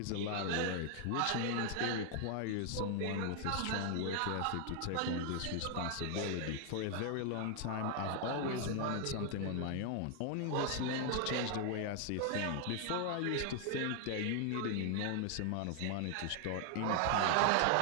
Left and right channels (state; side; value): different; both; correlation 0.00